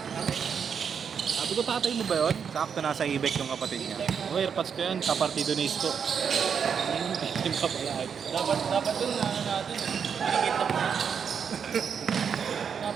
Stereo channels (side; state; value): left; quieter; 7.0 dB